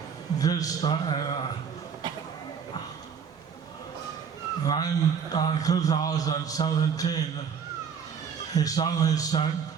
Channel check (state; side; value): quieter; left; 6.7 dB